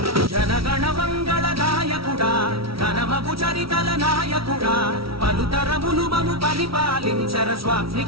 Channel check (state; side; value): late; left; 0.75 ms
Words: జనగణ మంగళ నాయకుడా, ఘనమగు చరితల నాయకుడా, పలుతరములు మము పరిపాలించర